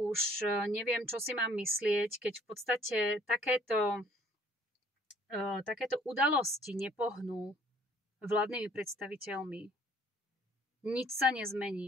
neviem, čo si mám myslieť, keď v podstate takéto udalosti nepohnú vládnymi predstaviteľmi. Nič sa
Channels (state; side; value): normal; both; correlation 0.58